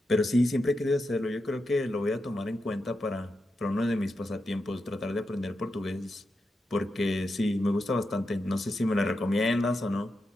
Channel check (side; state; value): both; normal; correlation 0.88